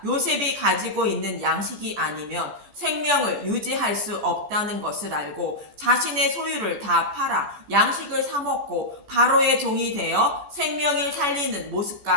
요셉이 가지고 있는 양식이 아니면 생명을 유지할 수 없다는 것을 알고 자신의 소유를 다 팔아 양식을 사 먹고 바로의 종이 되어 생명을 살리는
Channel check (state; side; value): late; left; 14 ms